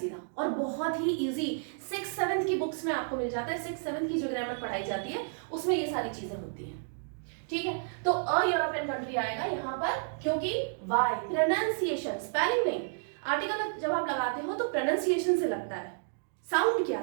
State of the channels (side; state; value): left; silent; digital silence